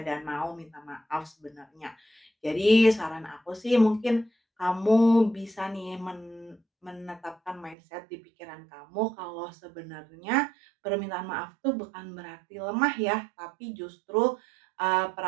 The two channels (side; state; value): left; drops out; at 7.8 s